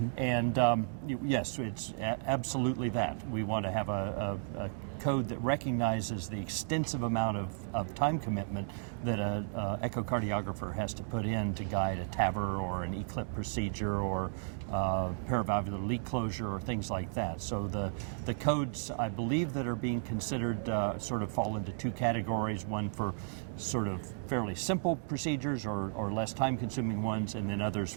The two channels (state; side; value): silent; left; digital silence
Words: and yes, it's absolutely that. We want to have a code that recognizes the extensive amount of time commitment that an echocardiographer has to put in to guide a TAVR or an ECLIP procedure or paravalvular leak closure or things like that. So the codes, I believe, that are being considered sort of fall into two categories, one for sort of fairly simple procedures or less time-consuming ones, and then others